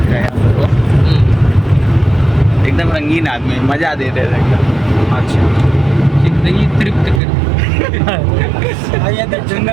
एकदम रंगीन आदमी, मजा दे रहे थे एकदम। अच्छा जिंदगी तृप्त कर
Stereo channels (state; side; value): drops out; left; at 7.2 s